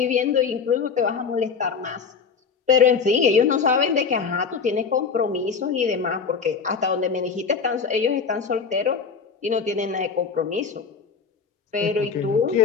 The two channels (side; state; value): right; quieter; 5.7 dB